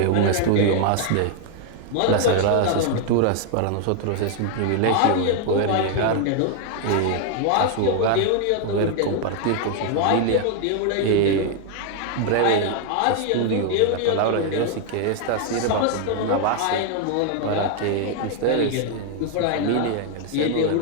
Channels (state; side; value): different; both; correlation 0.00